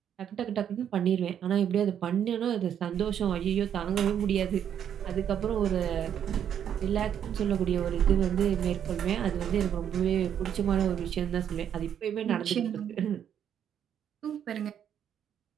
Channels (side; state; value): left; quieter; 9.1 dB